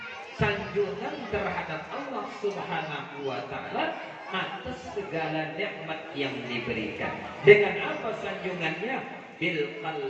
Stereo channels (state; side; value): identical; both; correlation 1.00